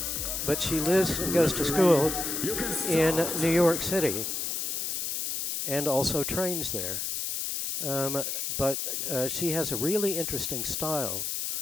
but she lives and goes to school in New York City and also trains there. But she has a really interesting style,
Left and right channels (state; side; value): noise; left; hiss, 2 dB below the sound